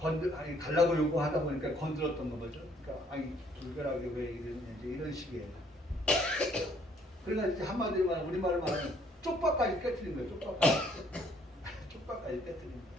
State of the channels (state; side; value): normal; both; correlation 0.64